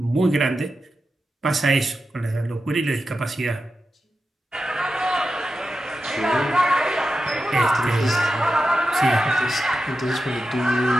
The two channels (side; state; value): both; normal; correlation 0.90